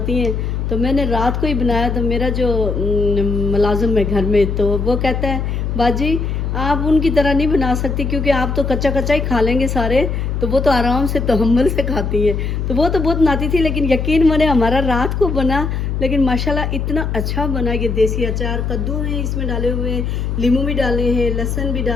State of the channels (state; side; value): noise; left; hum, 2 dB below the sound